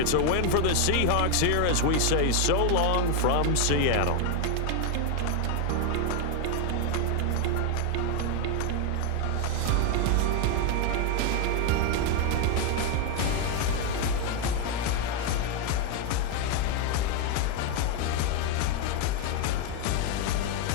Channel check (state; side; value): different; both; correlation 0.01